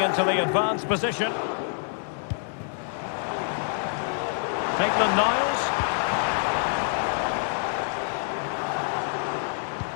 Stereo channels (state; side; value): silent; right; 61 dB below the other